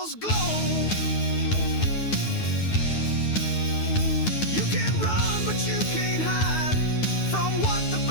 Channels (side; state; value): right; late; 9.3 ms